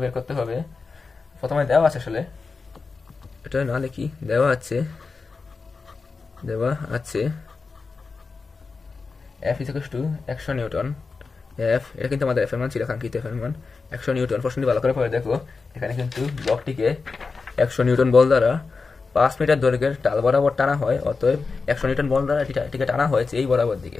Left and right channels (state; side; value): quieter; right; 4.5 dB